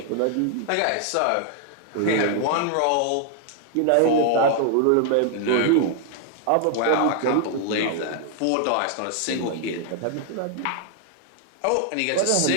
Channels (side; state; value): both; different; correlation 0.00